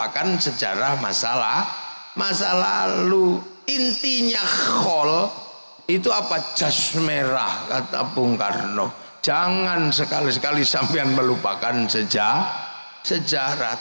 sejarah masa lalu. Intinya khol itu apa? Jas merah, kata Bung Karno. Jangan sekali-sekali sampean melupakan sejarah.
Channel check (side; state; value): both; inverted; correlation -1.00